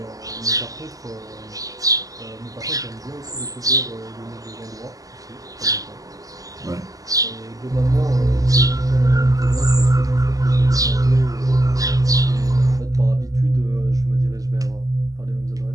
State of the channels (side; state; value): left; late; 0.17 ms